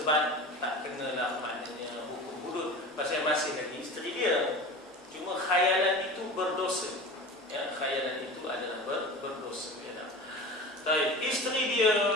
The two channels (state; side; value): normal; both; correlation 0.33